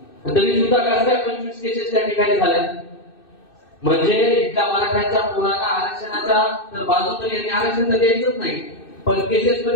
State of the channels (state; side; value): late; right; 2.6 ms